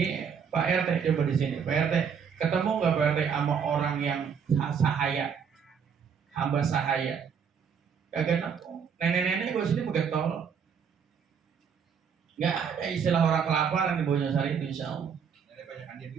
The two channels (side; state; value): left; quieter; 6.9 dB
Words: Pak RT coba di sini, Pak RT ketemu nggak Pak RT sama orang yang sahaya, hamba sahaya? Kagak nemu. Nenek-nenek gue sini begetol. Nggak ada istilah orang kelaparan di Bojong itu insya Allah. Banyakan dia